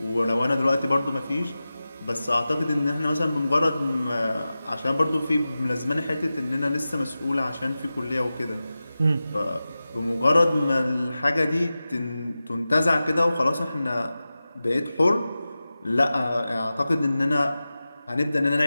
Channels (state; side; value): inverted; both; correlation -0.95